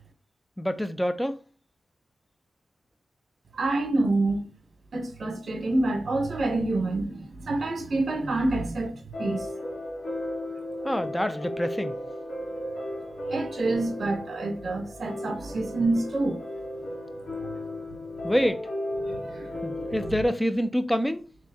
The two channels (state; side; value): normal; both; correlation 0.94